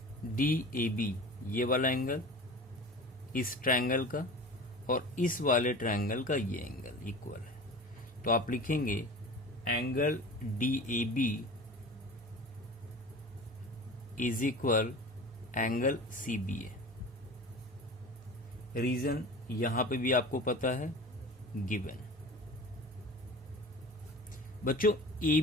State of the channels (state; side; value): normal; both; correlation 0.37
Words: DAB, ये वाला एंगल इस ट्रायंगल का और इस वाले ट्रायंगल का ये एंगल इक्वल है। तो आप लिखेंगे angle DAB is equal angle CBA। Reason यहां पे भी आपको पता है, गिवन। बच्चों